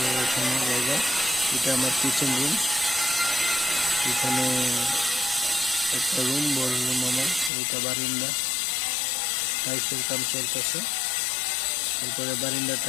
এখানে জায়গা। এটা আমার কিচেন রুম। এখানে একটা রুম, বড় রুম আমার। ওইটা বারিন্দা, টাইলসের কাম চলতেছে। তারপরে বারিন্দা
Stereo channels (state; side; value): drops out; right; at 7.5 s